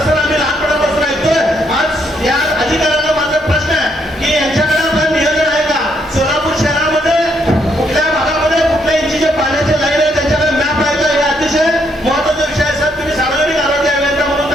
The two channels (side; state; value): both; normal; correlation 0.73